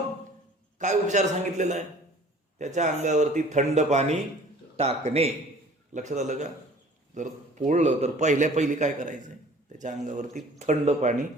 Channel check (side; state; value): both; normal; correlation 0.50